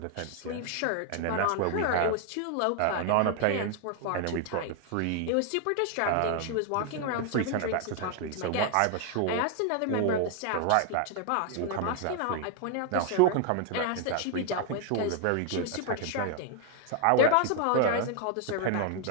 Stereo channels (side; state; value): both; different; correlation 0.00